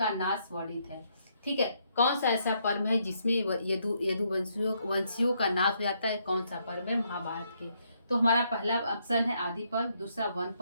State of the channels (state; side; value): inverted; both; correlation -0.74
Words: नाश वर्णित है? ठीक है, कौन सा ऐसा पर्व है जिसमें यदुवंशियों का नाश हो जाता है? कौन सा पर्व है महाभारत के? तो हमारा पहला ऑप्शन है आदि पर्व, दूसरा वन